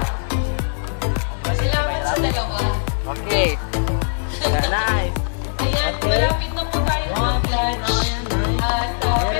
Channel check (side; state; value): right; silent; 65 dB below the other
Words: Salamat sa dalawa. Okay. Yeah, nice. Ayan, Okay. malapit na po tayo One, two, three, mag-lunch. tama yan, nice. At